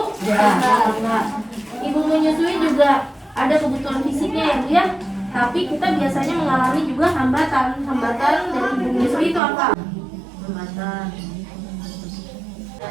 Ya. Enggak. Ibu menyusui juga ada kebutuhan fisiknya ya Bu ya. Tapi kita biasanya mengalami juga hambatan. Hambatan dari ibu menyusui itu apa? Hambatan.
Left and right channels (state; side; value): drops out; left; at 9.4 s